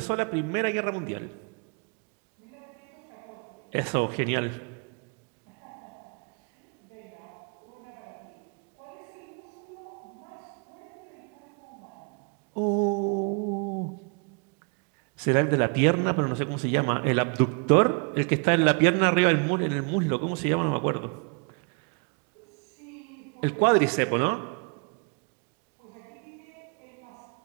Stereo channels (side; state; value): left; quieter; 36.1 dB